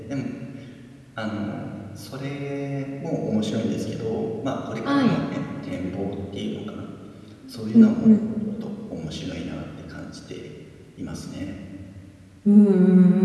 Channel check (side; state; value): both; identical; correlation 1.00